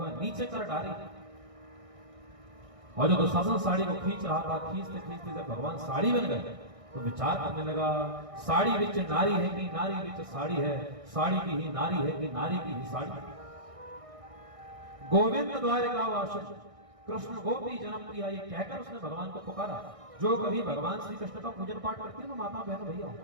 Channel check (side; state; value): left; late; 1.6 ms